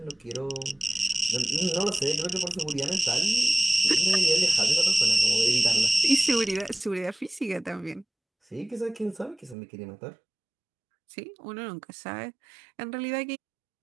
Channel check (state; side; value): drops out; left; at 9.6 s